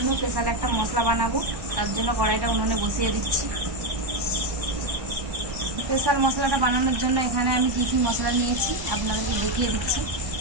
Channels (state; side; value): late; left; 1.1 ms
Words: স্পেশাল একটা মশলা বানাবো, তার জন্য কড়াইটা উনুনে বসিয়ে দিচ্ছি। স্পেশাল মশলাটা বানানোর জন্য এখানে আমি কি কি মশলা নিয়েছি আপনাদেরকে দেখিয়ে দিচ্ছি।